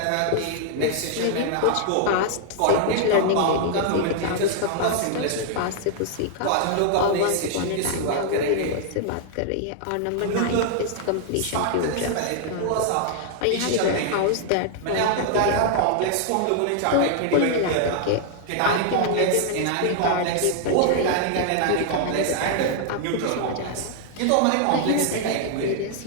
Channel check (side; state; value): both; different; correlation 0.00